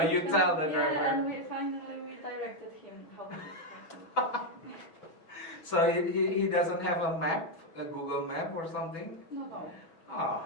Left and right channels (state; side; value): late; right; 6.1 ms